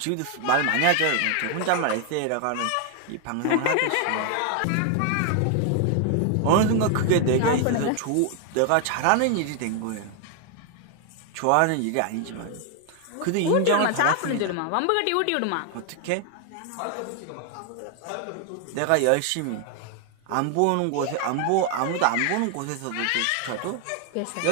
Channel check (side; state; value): both; different; correlation 0.00